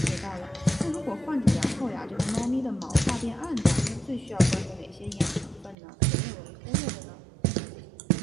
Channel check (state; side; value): drops out; left; at 5.8 s